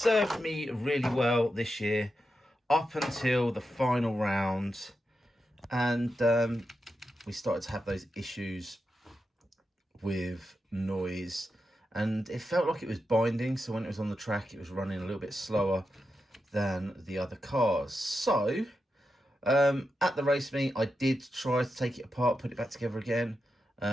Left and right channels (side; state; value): both; normal; correlation 0.88